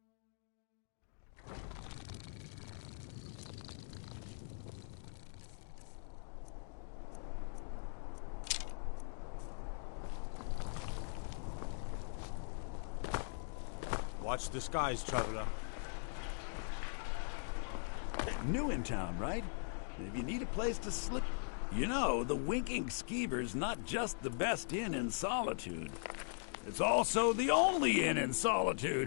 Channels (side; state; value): right; silent; digital silence